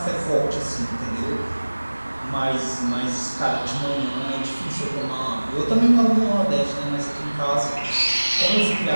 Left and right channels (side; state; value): both; inverted; correlation -1.00